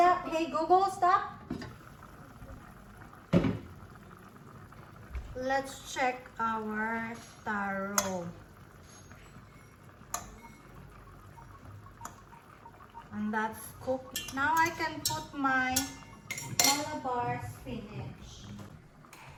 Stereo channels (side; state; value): both; identical; correlation 1.00